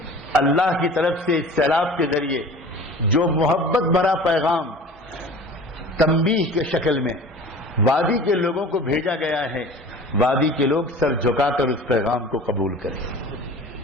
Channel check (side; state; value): both; normal; correlation 0.41